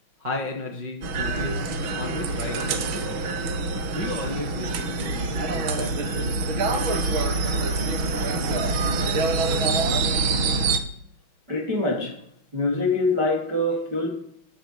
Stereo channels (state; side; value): late; left; 6.1 ms